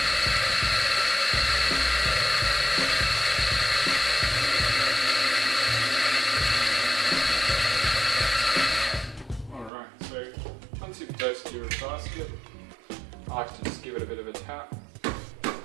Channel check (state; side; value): drops out; left; at 9.7 s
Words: Alright, so once you've dosed your basket, I like to just give it a bit of a tap.